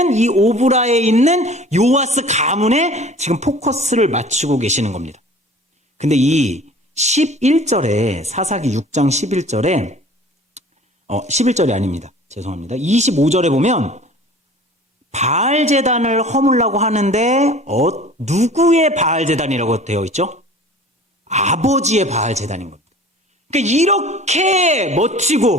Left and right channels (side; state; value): both; normal; correlation 0.45